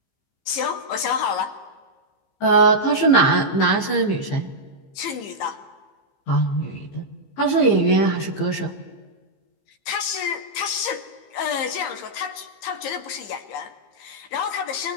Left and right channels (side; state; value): right; late; 15 ms